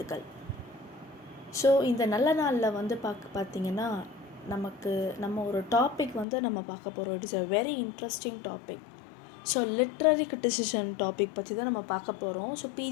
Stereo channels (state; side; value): drops out; right; at 6.2 s